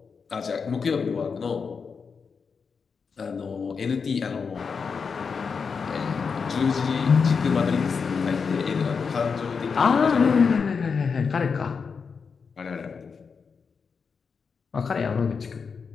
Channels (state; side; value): quieter; right; 5.6 dB